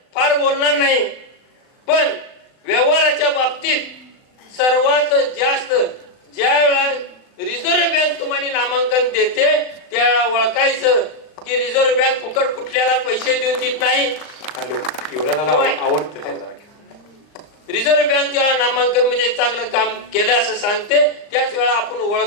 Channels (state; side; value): late; right; 39 ms